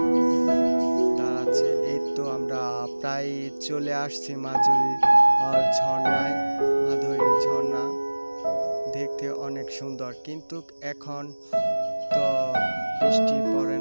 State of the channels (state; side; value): inverted; both; correlation -1.00